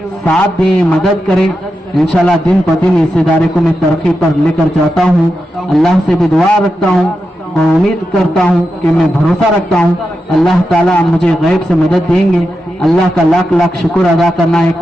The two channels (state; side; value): normal; both; correlation 0.89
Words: साथ दें, मदद करें। इंशाल्लाह दिन पर दिन इस इदारे को मैं तरक्की पर लेकर जाता हूँ। अल्लाह से भी दुआ रखता हूँ और उम्मीद करता हूँ कि मैं भरोसा रखता हूँ अल्लाह ताला मुझे गैब से मदद देंगे। अल्लाह का लाख लाख शुक्र अदा करना है,